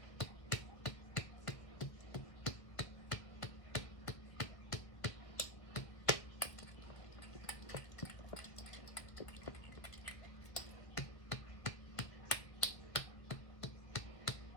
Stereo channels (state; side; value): late; right; 1.5 ms